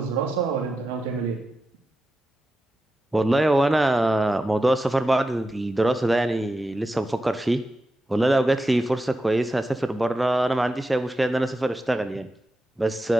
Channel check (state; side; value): normal; both; correlation 0.90